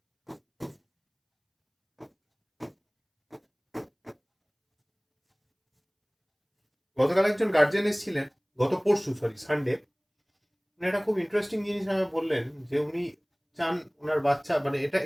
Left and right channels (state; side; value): identical; both; correlation 1.00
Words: গতকাল একজন গার্জিয়ান এসেছিলেন, গত পরশু সানডে, উনি একটা খুব ইন্টারেস্টিং জিনিস আমাকে বললেন যে উনি চান ওনার বাচ্চা, মানে